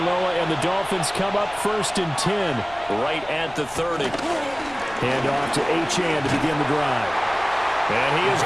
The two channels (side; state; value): left; noise; rumble, 21 dB below the sound